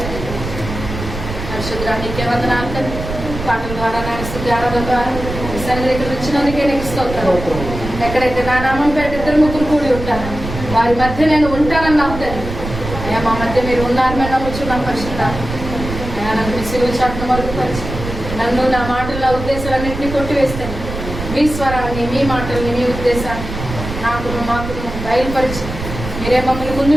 పరిశుద్ధానికి వందనాలు తండ్రి. పాటల ద్వారా నాయన స్తుతి ఆరాధన ద్వారా ఈ సన్నిధికి వచ్చినందుకే నీకు స్తోత్రం. ఎక్కడైతే నా నామం పేట ఇద్దరు ముగ్గురు కూడి ఉంటాను వారి మధ్య నేను ఉంటానని నమ్ముతాను అయ్యా. మా మధ్య మీరు ఉన్నారని నమ్ముచున్నాం. పరిశుద్ధాన్ని అయ్యా నన్ను మీ సిలువ చాటును మరుగుపరిచి నన్ను నా మాటలు నా ఉద్దేశాలన్నింటినీ కొట్టివేస్తాను. మీ స్వరాన్ని మీ మాటల్ని మీ ఉద్దేశాన్ని మాకు బయలుపరిచి మీరే మమ్మల్ని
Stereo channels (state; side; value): noise; right; rumble, 7 dB below the sound